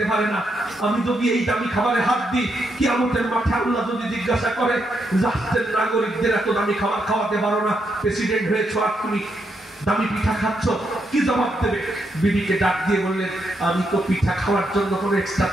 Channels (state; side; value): normal; both; correlation 0.80